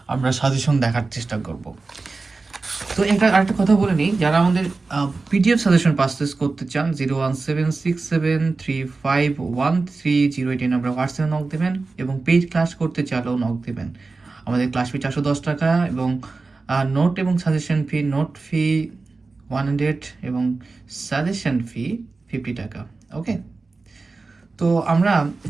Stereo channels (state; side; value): quieter; left; 3.8 dB